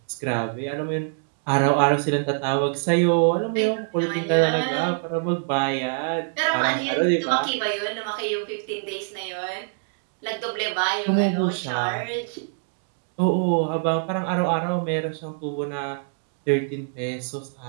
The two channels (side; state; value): left; silent; digital silence